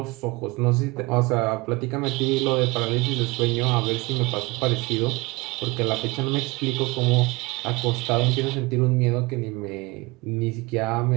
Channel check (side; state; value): left; quieter; 24.0 dB